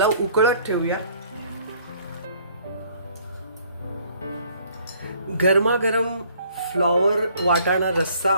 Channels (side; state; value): both; inverted; correlation -0.59